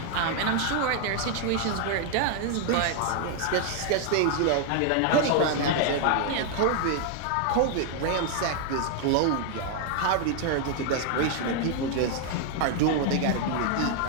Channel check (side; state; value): both; different; correlation 0.00